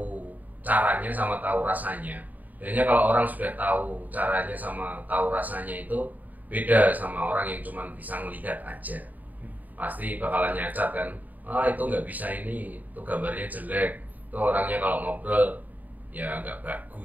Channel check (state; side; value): late; left; 0.080 ms